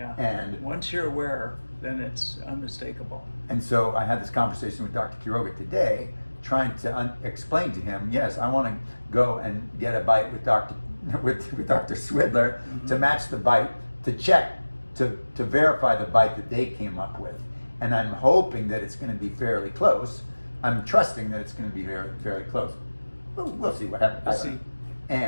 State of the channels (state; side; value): inverted; both; correlation -1.00